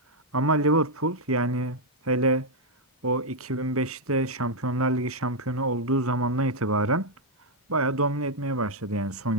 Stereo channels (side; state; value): both; normal; correlation -0.02